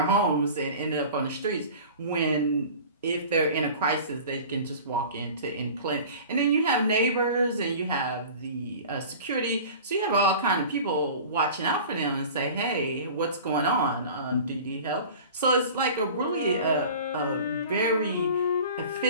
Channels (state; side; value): inverted; both; correlation -0.40